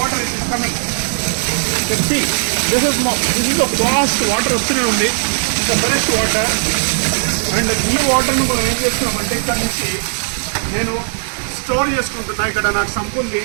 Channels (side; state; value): left; silent; 64 dB below the other